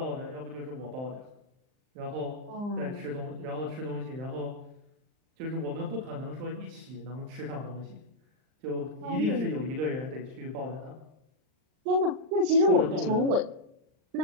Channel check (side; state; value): left; late; 39 ms